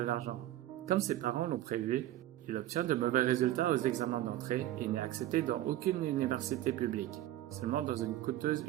Comme ses parents l'ont prévu, il obtient de mauvais résultats aux examens d'entrée et n'est accepté dans aucune université publique, seulement dans une coûteuse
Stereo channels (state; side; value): quieter; left; 14.0 dB